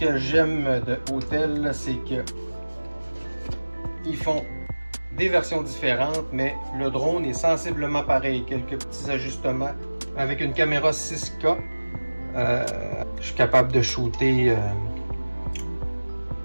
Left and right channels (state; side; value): inverted; both; correlation -1.00